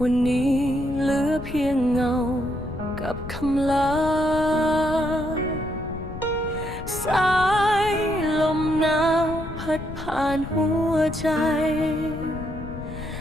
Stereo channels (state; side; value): noise; left; rumble, 10 dB below the sound